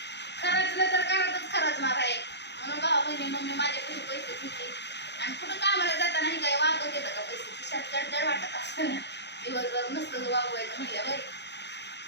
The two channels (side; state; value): right; late; 0.50 ms